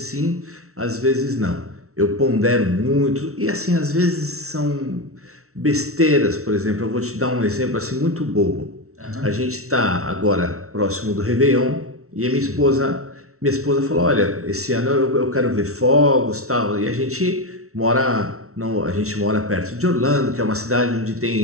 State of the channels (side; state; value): left; late; 0.63 ms